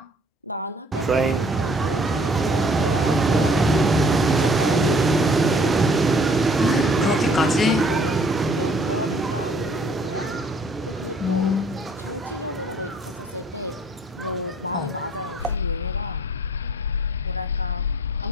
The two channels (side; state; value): both; normal; correlation 0.57